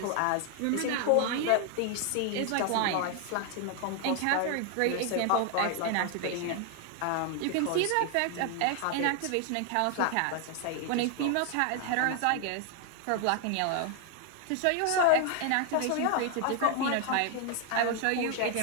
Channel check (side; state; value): both; different; correlation 0.00